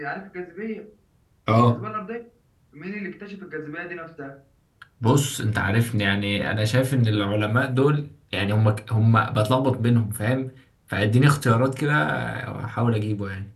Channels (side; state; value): both; identical; correlation 1.00